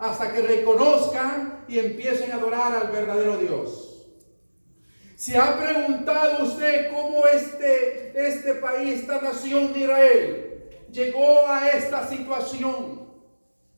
que reconozcan y empiecen a adorar al verdadero Dios. ¿Se ha preguntado usted cómo este país, esta nación de Israel, llegó a esta situación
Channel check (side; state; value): both; inverted; correlation -1.00